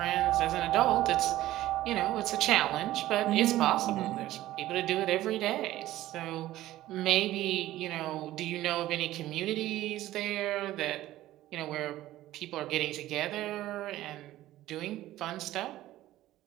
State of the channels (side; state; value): left; quieter; 15.1 dB